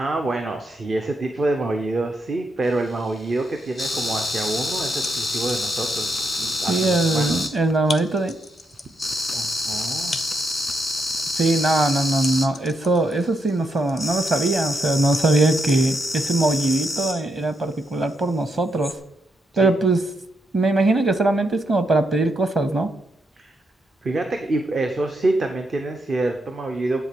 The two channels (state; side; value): normal; both; correlation 0.81